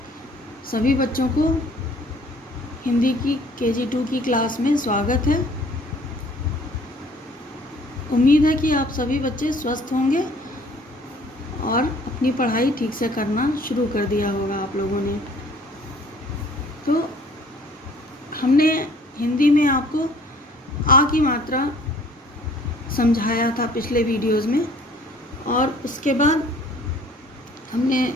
सभी बच्चों को हिंदी की KG2 की क्लास में स्वागत है। उम्मीद है कि आप सभी बच्चे स्वस्थ होंगे और अपनी पढ़ाई ठीक से करना शुरू कर दिया होगा आप लोगों ने। तो हमने हिंदी में आपको आ की मात्रा समझाया था पिछले वीडियोज़ में, और उसके बाद हमने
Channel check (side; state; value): both; normal; correlation 0.55